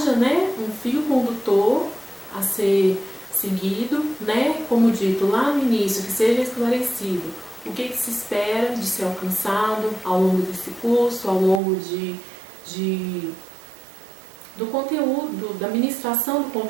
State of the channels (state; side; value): drops out; left; at 11.6 s